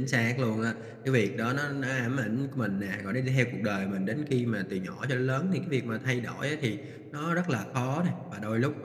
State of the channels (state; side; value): identical; both; correlation 1.00